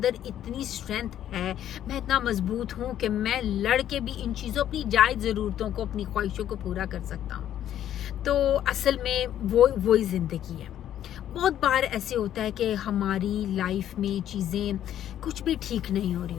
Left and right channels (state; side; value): quieter; right; 11.1 dB